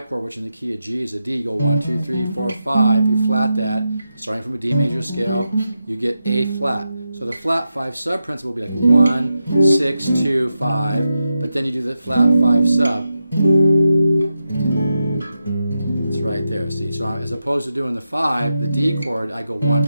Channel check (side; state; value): both; inverted; correlation -0.89